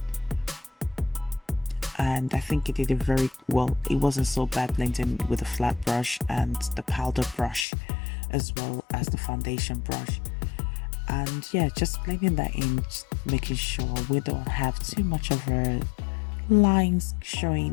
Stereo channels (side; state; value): right; drops out; at 7.7 s